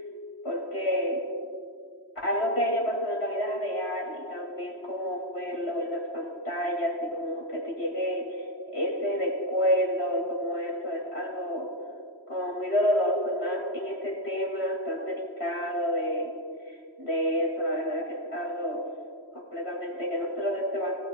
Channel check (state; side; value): late; right; 3.1 ms